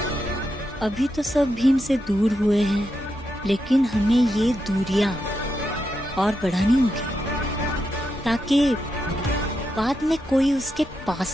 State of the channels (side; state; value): both; normal; correlation 0.85